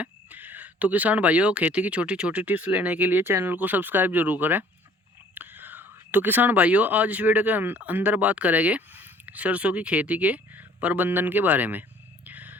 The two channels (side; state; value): both; normal; correlation 0.55